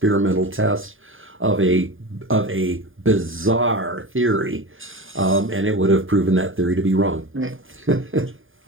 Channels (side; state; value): left; late; 0.59 ms